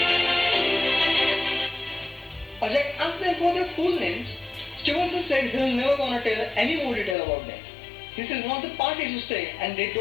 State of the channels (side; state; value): right; drops out; at 7.2 s